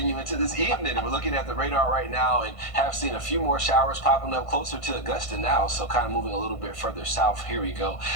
into this evening. We're looking at the radar right now and have seen a few more showers popping up closer to Augusta now, so kind of moving a little bit further south. Here we go.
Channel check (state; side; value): late; right; 1.5 ms